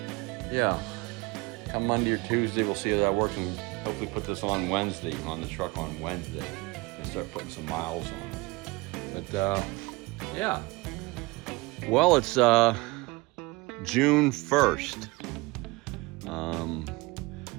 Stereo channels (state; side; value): quieter; left; 23.2 dB